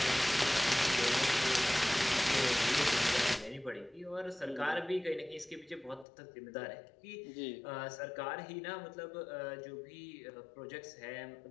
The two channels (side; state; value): right; drops out; at 6.1 s